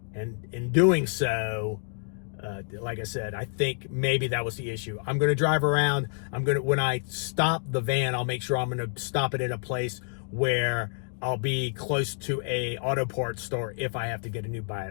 And in doing so, like I said, I think maybe that was the issue. I'm going to drive around. When I stop the van, I'll make sure I'm going to stop it in a place where I'll be close to a auto parts store if I have to get a new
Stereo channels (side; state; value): right; silent; 55 dB below the other